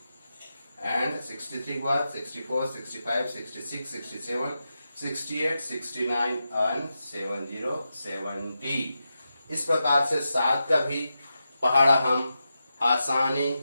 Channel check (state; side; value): inverted; both; correlation -0.89